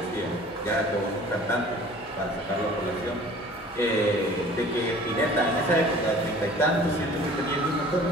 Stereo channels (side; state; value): right; noise; hum, 28 dB below the sound